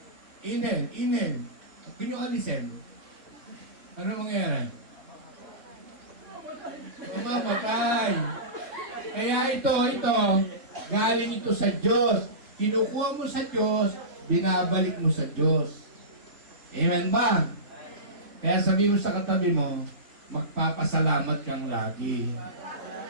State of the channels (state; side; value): late; left; 3.5 ms